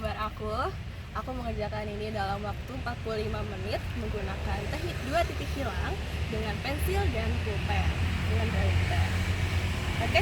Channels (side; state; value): both; identical; correlation 1.00